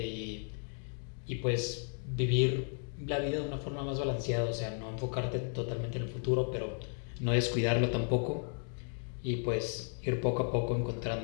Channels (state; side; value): silent; right; 55 dB below the other